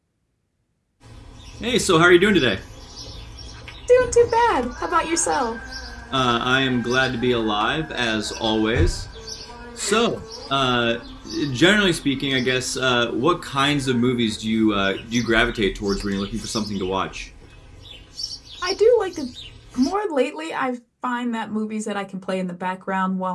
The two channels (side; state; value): both; identical; correlation 1.00